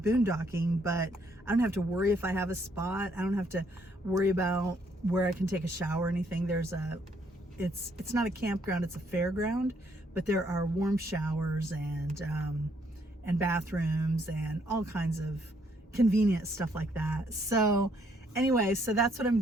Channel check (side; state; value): both; normal; correlation 0.70